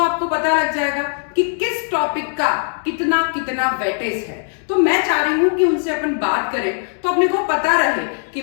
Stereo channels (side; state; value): right; silent; 63 dB below the other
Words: पता लग जाएगा कि किस टॉपिक का कितना कितना वेटेज है। तो मैं चाह रही हूं कि उनसे अपन बात करें तो अपने को पता रहे कि